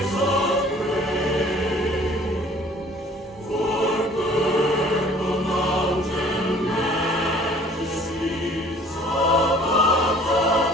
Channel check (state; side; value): normal; both; correlation 0.53